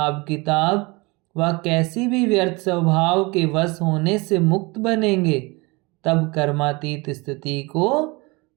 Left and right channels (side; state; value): left; quieter; 25.8 dB